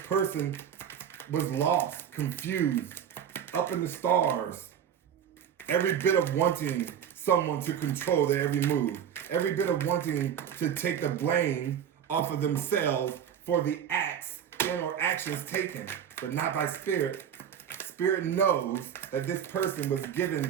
was lost, confused, up in the stars. Every bit of wanting someone to control their every move. Every bit of wanting to take the blame off of themselves for the acts and or actions taken, but not by Spirit. Spirit knows that this person was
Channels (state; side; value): quieter; left; 8.9 dB